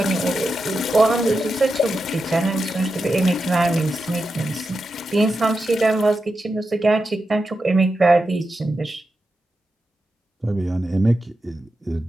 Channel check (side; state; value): both; normal; correlation 0.89